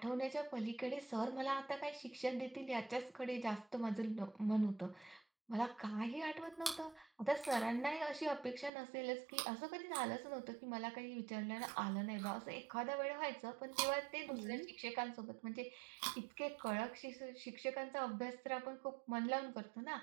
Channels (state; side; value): drops out; left; at 8.7 s